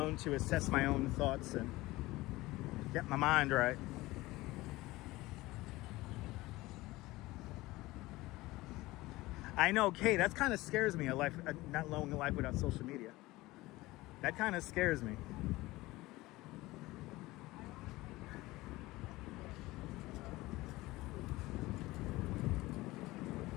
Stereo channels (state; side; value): quieter; right; 19.4 dB